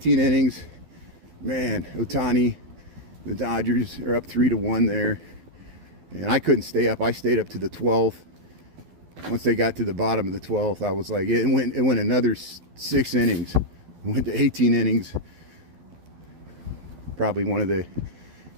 innings. Man, Ohtani, the Dodgers are up 3-1 there. And I couldn't stay up. I stayed up to the 12th. Once they got to the bottom of the 12th, I was like, it went another 6 innings. It went to 18 innings. Probably one of the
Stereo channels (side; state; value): left; late; 12 ms